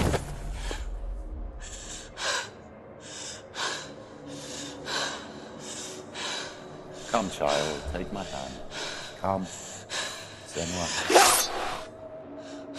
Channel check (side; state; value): both; identical; correlation 1.00